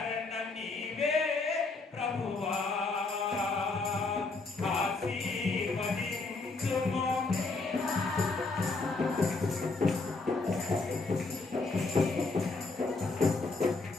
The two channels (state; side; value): quieter; right; 3.7 dB